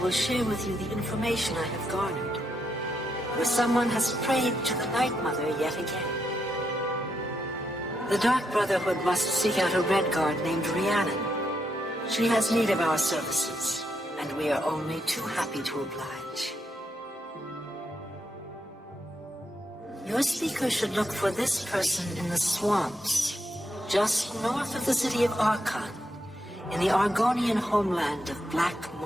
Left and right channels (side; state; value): both; normal; correlation 0.80